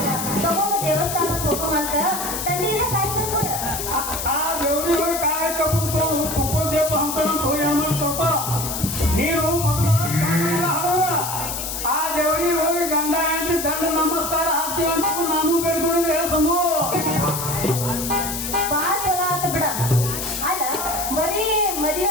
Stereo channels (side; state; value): left; noise; hiss, 4 dB below the sound